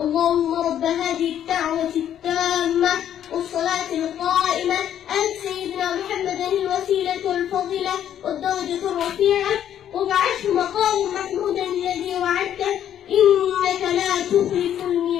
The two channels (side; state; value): right; quieter; 10.3 dB